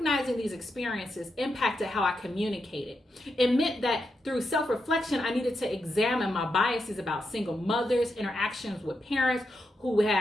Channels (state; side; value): normal; both; correlation 0.85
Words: these experiences impacted how I communicated. It meant that through self-reflection, I needed to examine my biases about single mothers, interactions with parents who